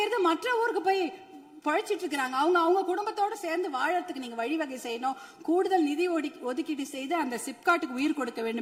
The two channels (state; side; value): identical; both; correlation 1.00